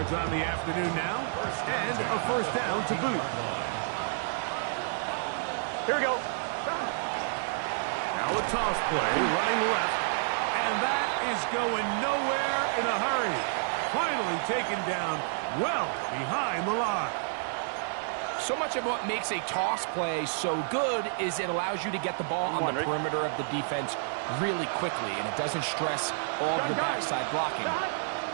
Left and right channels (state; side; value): silent; left; digital silence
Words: on the afternoon now, and a first down to boot. Here we go. Now a toss play, running left, and that is going nowhere in a hurry. Finally taken down well behind the line. So much of what makes a toss play so good is it allows you to get the ball on the perimeter of the defense really quickly, and it doesn't stress all of the backside blocking.